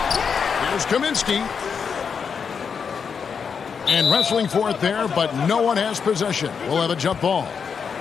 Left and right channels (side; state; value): right; quieter; 6.3 dB